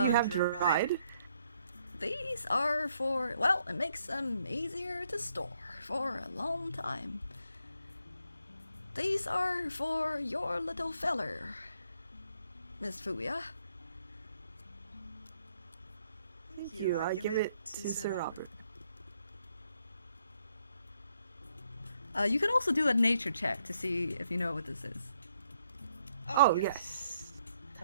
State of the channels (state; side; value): inverted; both; correlation -0.73